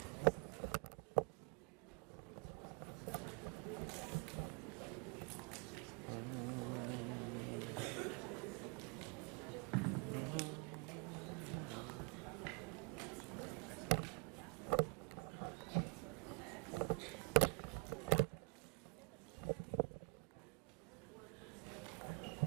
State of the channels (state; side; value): quieter; left; 34.3 dB